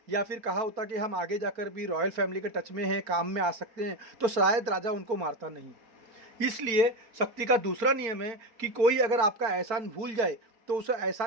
या फिर कहा होता कि हम आगे जाकर भी रॉयल फैमिली के टच में हैं, काम में आ सकते हैं, तो शायद राजा उनको मारता नहीं। इसलिए शक्ति का दूसरा नियम है कि कोई अगर आपका एहसान भूल जाए तो उसे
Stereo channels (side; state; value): left; late; 4.4 ms